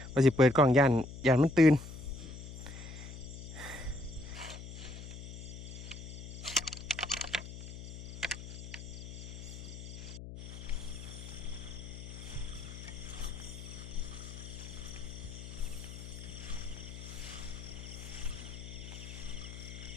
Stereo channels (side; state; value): left; noise; hum, 10 dB below the sound